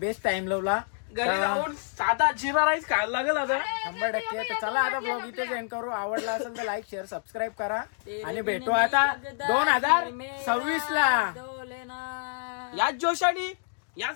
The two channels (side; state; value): right; silent; digital silence